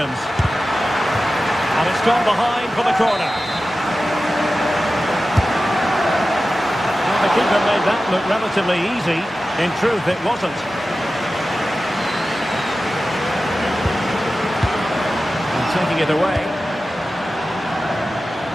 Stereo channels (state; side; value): normal; both; correlation 0.94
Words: And it's gone behind for the corner. Well, the keeper made that look relatively easy. In truth, it wasn't. And taking it away.